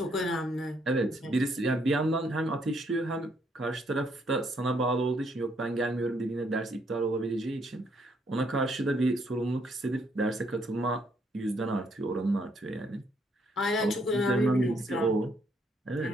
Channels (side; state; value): both; normal; correlation 0.71